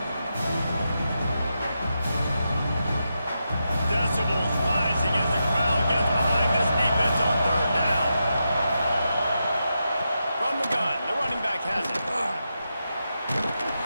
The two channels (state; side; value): inverted; both; correlation -0.87